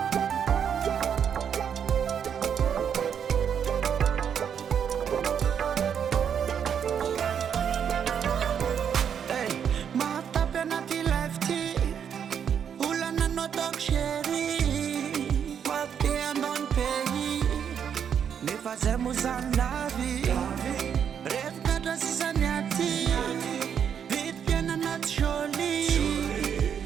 Fazemos a nave, resgata sisaniati, vitpiana natcholi,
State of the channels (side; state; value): left; quieter; 8.0 dB